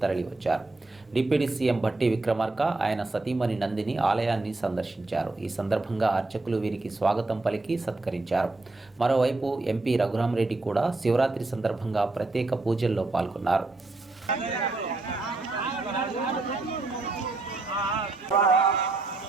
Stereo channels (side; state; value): left; quieter; 3.2 dB